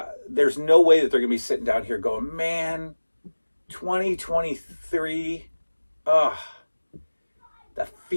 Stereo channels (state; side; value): inverted; both; correlation -1.00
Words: There's no way that they're going to be sitting down here going, man, 2023, that